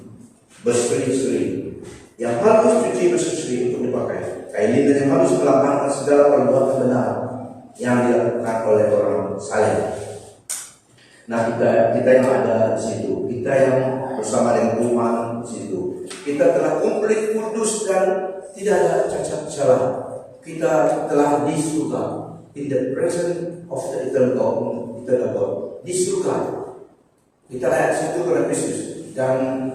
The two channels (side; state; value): both; identical; correlation 1.00